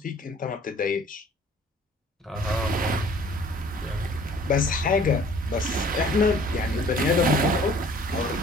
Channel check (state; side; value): normal; both; correlation 0.53